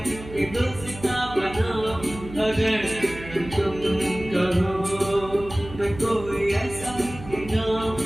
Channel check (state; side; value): noise; right; hum, 14 dB below the sound